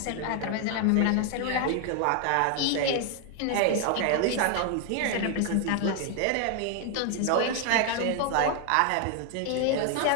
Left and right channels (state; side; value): different; both; correlation 0.00